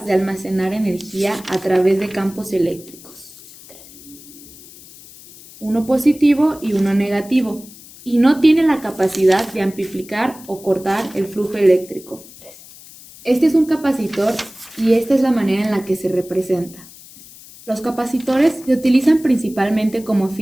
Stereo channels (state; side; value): noise; left; hiss, 20 dB below the sound